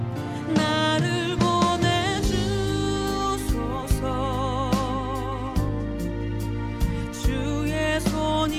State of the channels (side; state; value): both; identical; correlation 1.00